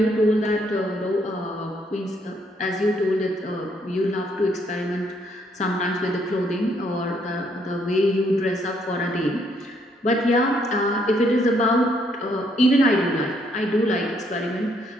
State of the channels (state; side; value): normal; both; correlation 0.71